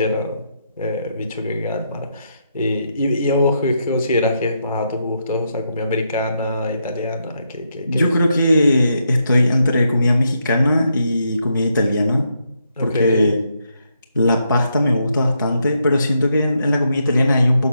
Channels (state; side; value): inverted; both; correlation -0.80